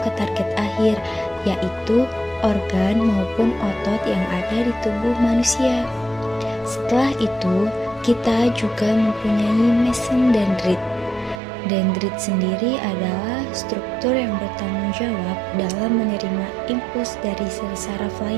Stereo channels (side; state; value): left; drops out; at 11.4 s